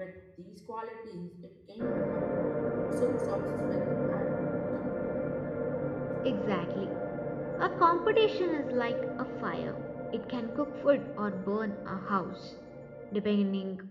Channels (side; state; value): both; identical; correlation 1.00